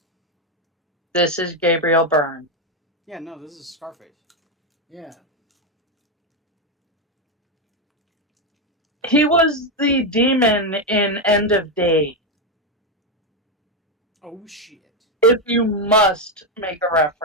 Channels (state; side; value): normal; both; correlation 0.06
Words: This is Gabriel Byrne. Yeah, no, this is Scarface. Yeah. He was the demon in End of Day. Oh, shit. If you must make a